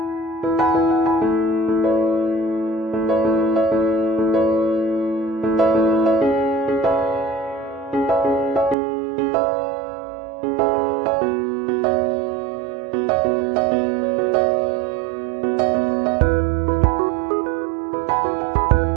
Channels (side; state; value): left; drops out; at 8.8 s